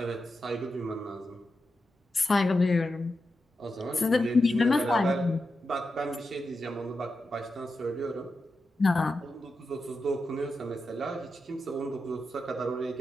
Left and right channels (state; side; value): normal; both; correlation 0.89